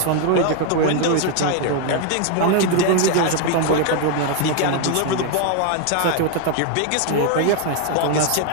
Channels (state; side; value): different; both; correlation 0.01